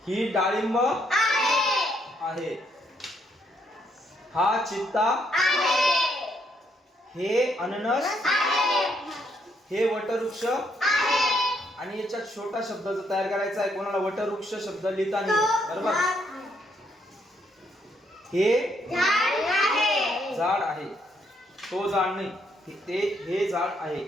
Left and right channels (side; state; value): both; normal; correlation 0.73